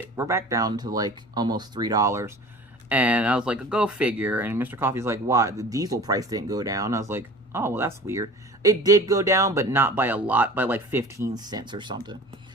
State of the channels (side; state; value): both; normal; correlation 0.41